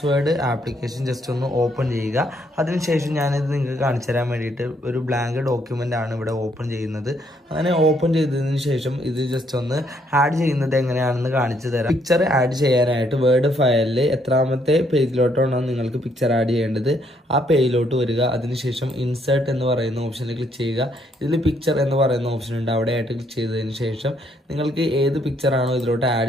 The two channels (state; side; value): normal; both; correlation 0.71